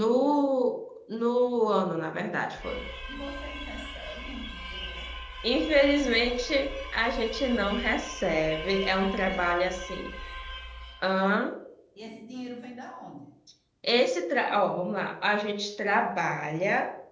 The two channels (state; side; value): identical; both; correlation 1.00